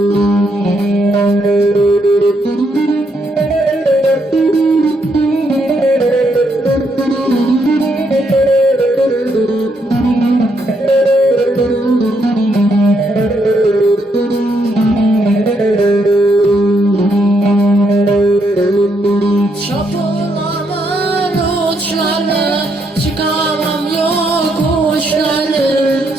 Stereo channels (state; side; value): normal; both; correlation 0.76